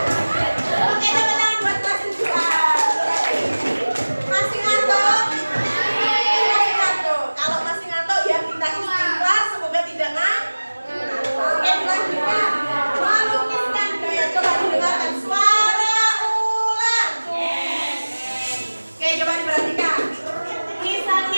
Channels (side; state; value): both; inverted; correlation -1.00